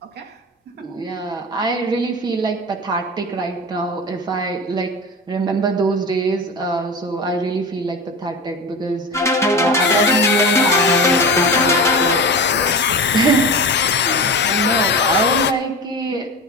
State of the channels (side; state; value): both; normal; correlation 0.28